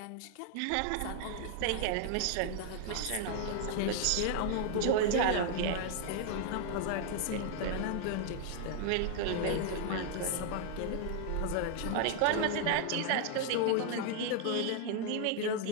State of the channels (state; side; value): different; both; correlation 0.00